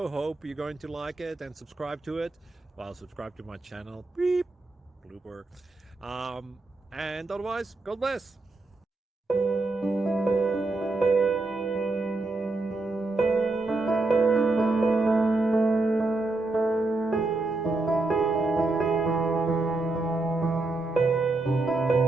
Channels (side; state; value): left; quieter; 3.1 dB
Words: Hope you're going to like it and subscribe to it. Well, subscribe to my channel. Beep, blooper. And otherwise, God bless.